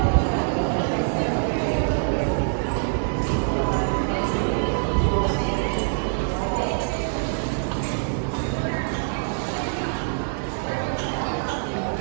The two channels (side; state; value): left; silent; digital silence